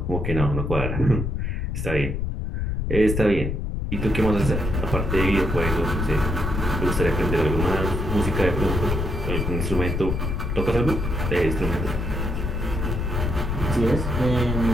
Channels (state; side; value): noise; left; rumble, 2 dB below the sound